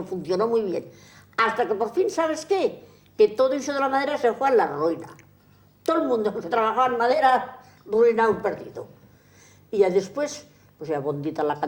funcionó muy bien. Hasta que por fin, ¿sabes qué? Que todo eso de la madera se fue a la ruina. Todo el mundo que trabajaba en madera, ruinado, perdido. Y ya después, pues ya bondita la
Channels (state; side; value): identical; both; correlation 1.00